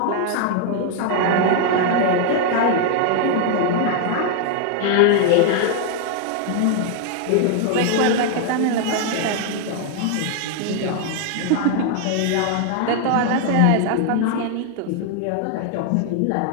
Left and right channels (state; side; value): different; both; correlation 0.00